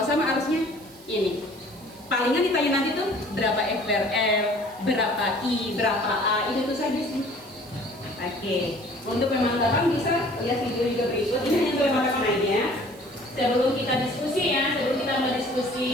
sama arusnya ini. Palingan ditanya nanti tuh berapa F per L, berapa I, berapa A, itu saja sih. Oke, untuk pemantapan bisa lihat video juga berikut. Ini hanya untuk pemantapan aja. Sebelum kita diskusi ya, sebelum kita mulai diskusi,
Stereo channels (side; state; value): right; noise; hiss, 23 dB below the sound